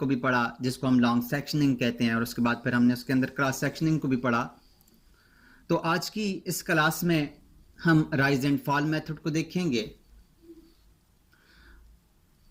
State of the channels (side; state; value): both; identical; correlation 1.00